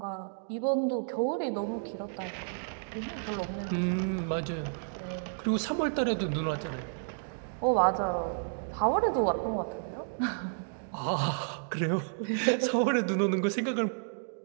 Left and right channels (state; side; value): silent; left; digital silence